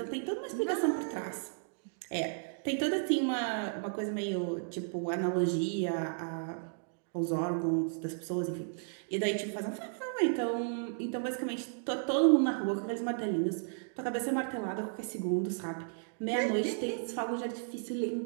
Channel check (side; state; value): left; silent; digital silence